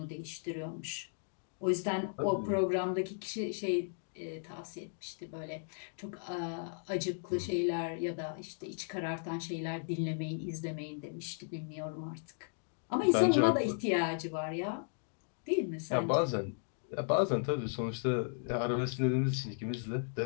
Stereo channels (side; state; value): right; silent; digital silence